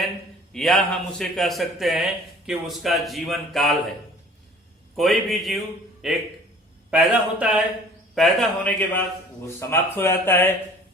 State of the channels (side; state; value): both; normal; correlation 0.50